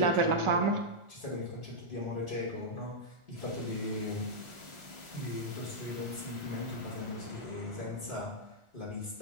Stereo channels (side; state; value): left; late; 1.4 ms